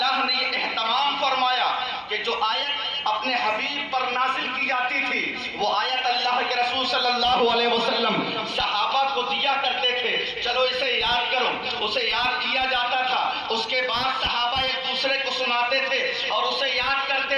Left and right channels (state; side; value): identical; both; correlation 1.00